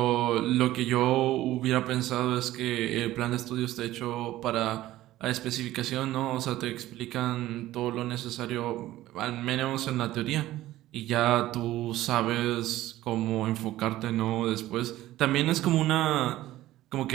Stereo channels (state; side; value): quieter; left; 15.3 dB